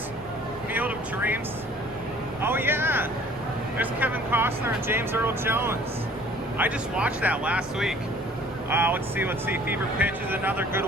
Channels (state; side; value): normal; both; correlation 0.53